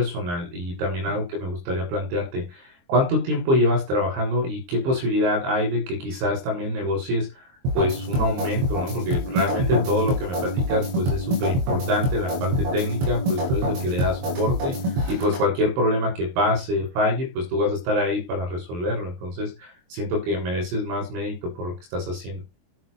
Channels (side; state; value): left; late; 23 ms